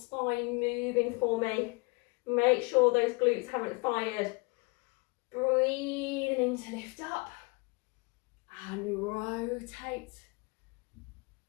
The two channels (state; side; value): quieter; right; 29.0 dB